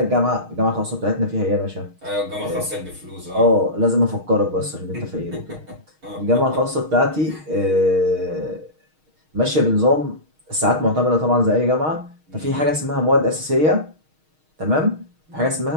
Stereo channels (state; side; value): late; left; 6.4 ms